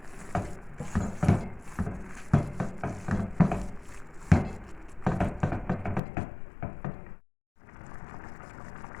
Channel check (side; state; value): right; drops out; at 6.0 s